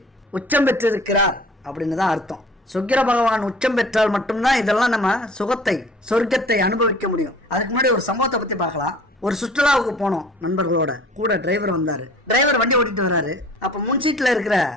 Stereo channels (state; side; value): normal; both; correlation 0.47